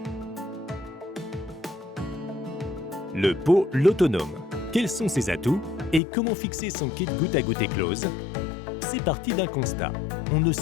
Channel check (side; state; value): right; drops out; at 6.0 s